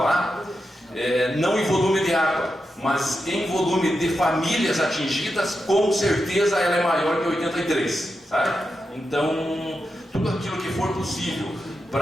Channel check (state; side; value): normal; both; correlation 0.88